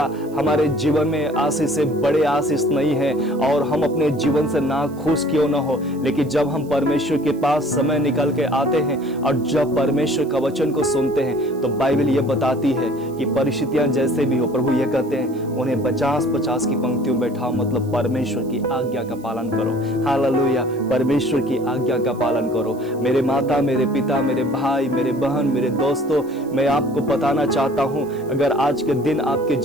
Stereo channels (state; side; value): noise; right; hiss, 26 dB below the sound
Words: हमारे जीवन में आशीष से बड़े आशीष नहीं है, और हम अपने जीवन से ना खुश क्यों ना हो, लेकिन जब हम परमेश्वर के पास समय निकाल के आते हैं और जब परमेश्वर का वचन को सुनते हैं, तो बाइबल ये बताती है कि परिस्थितियां जैसे भी हो, प्रभु ये कहते हैं उन्हें 50-50 की पंक्तियों बैठाओ, मतलब परमेश्वर की आज्ञा का पालन करो। हालेलुया। परमेश्वर की आज्ञा आज्ञा का पालन करो। मेरे माता, मेरे पिता, मेरे भाई, मेरे बहन, मेरे दोस्तों, मैं आपको बताना चाहता हूं, अगर आज के दिन आपके